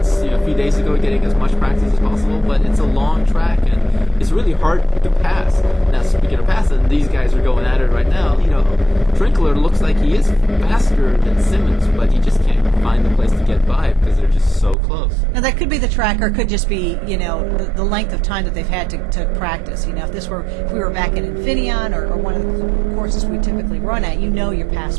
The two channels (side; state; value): left; drops out; at 14.8 s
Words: a few days ago, getting as much practice as possible. But it's a long track, and it's really hard to pass. Now, speaking of passing, these guys are going at it right now. Trinkler looks like he is faster than Simmons, but he just can't find the place to get by because they're just so close. Now that could be the track, or it could just be the length of time that they've had to practice. If we were back at Infineon or one of the courses we typically run at, your pass